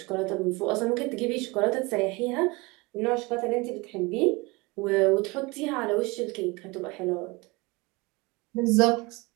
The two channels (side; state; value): left; quieter; 25.1 dB